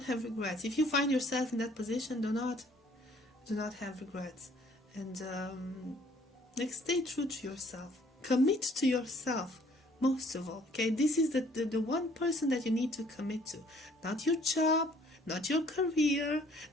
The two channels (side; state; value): both; normal; correlation 0.59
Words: have regrets. If you find yourself in that position, do not have regrets. And like, stay true to yourself. Commit to yourself, most of all. Okay, this is the one person that you need to commit to. Not your job, not your career,